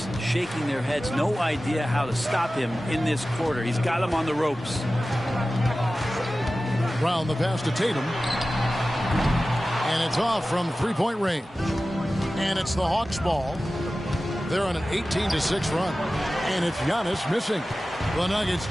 shaking their heads. No idea how to stop him in this quarter. He's got him on the ropes. Brown the pass to Tatum. And it's off from three-point range. And it's the Hawks ball. They're on an 18-6 run. And it's Giannis missing. The Nuggets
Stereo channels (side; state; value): both; normal; correlation 0.95